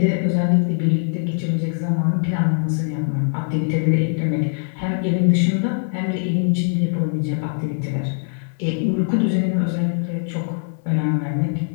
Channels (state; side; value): silent; right; digital silence